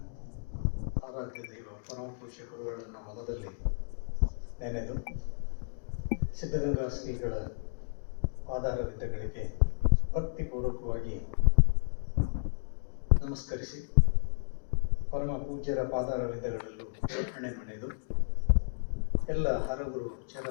ಆರಾಧ್ಯ ದೈವ ಪರಮ ಪೂಜ್ಯ ಗುರುಗಳನ್ನು ಮನದಲ್ಲಿ ನೆನೆದು ಸಿದ್ಧಗಂಗಾ ಶ್ರೀಗಳ ಪಾದಾರವಿಂದಗಳಿಗೆ ಭಕ್ತಿಪೂರ್ವಕವಾಗಿ ನಮಸ್ಕರಿಸಿ ಪರಮ ಪೂಜ್ಯರ ಪಾದಾರವಿಂದಗಳಲ್ಲೂ ಹಣೆ ಮಣೆದು ಎಲ್ಲ ಹರಗುರು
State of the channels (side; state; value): right; silent; digital silence